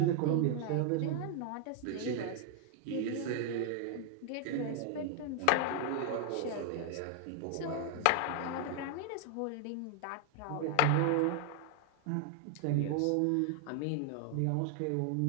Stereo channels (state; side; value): different; both; correlation 0.00